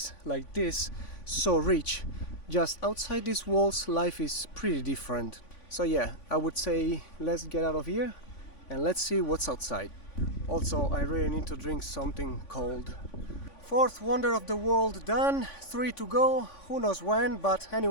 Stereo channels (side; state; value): right; late; 3.5 ms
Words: like this, so rich. Just outside these walls, life is pretty different. So yeah, I would say let's get out of here and let's see what's outside. Also, I really need to drink something cold. Fourth wonder of the world done, 3 to go, who knows when, but